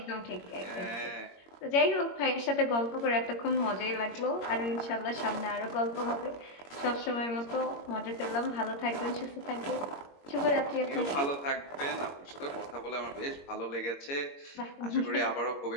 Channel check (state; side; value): late; right; 21 ms